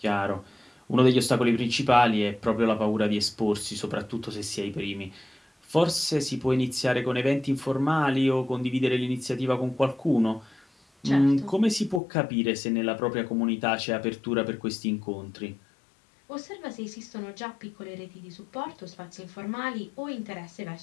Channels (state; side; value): drops out; right; at 12.0 s